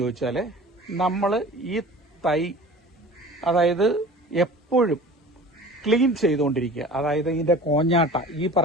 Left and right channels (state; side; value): normal; both; correlation 0.41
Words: ചോദിച്ചാൽ, നമ്മൾ ഈ തൈ അതായത് എപ്പോഴും ക്ലീൻ ചെയ്തുകൊണ്ടിരിക്കുക. അതായത് ഇതിന്റെ കോഞ്ഞാട്ട, ഈ